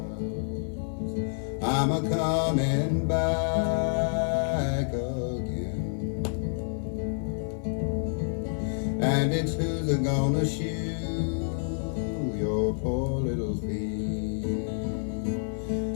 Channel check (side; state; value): right; silent; digital silence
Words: I'm a-coming back again. And it's who's a-gonna shoe your poor little feet?